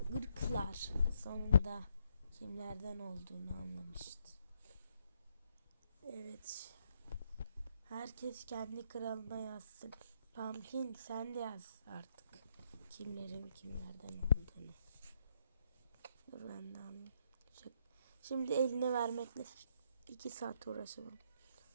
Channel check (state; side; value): inverted; both; correlation -0.74